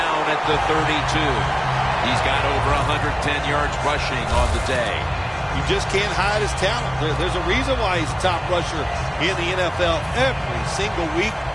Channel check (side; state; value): both; identical; correlation 1.00